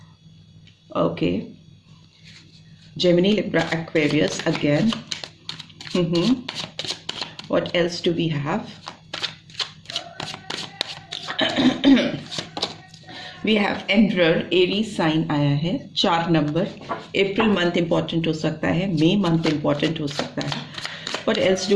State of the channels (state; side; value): identical; both; correlation 1.00